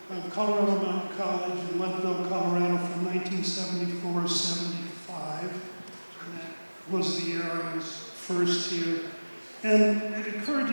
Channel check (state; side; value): inverted; both; correlation -1.00